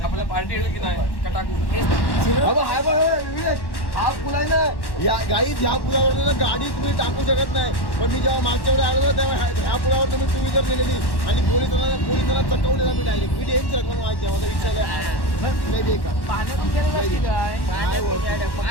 आपल्या पार्टी की नाही कटाकू. हा पूल आहे ना या गाई. ह्या पुलावर ना गाडी तुम्ही टाकू शकत नाही. पण मी जेव्हा मागच्या वेळेस आलो तेव्हा ह्या पुलावर तुम्ही 2 व्हीलर नेलेली आणि पोलिसांना चकवलेला मी डायरेक्ट. मी डेंच रकम माहिती आहे माझा विचारलं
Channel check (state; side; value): late; right; 1.1 ms